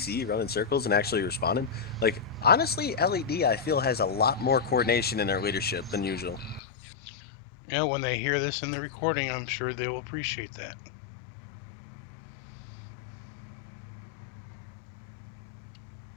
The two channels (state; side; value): drops out; right; at 6.6 s